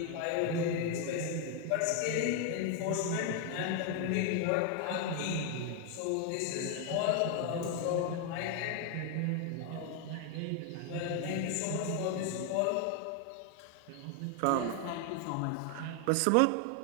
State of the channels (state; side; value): different; both; correlation 0.01